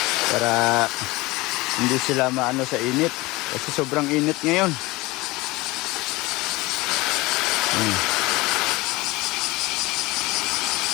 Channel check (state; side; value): quieter; right; 21.6 dB